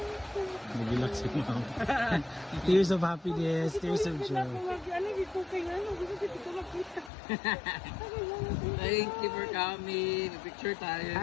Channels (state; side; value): drops out; right; at 7.1 s